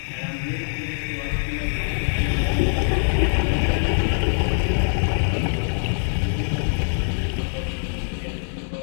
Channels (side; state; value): right; silent; digital silence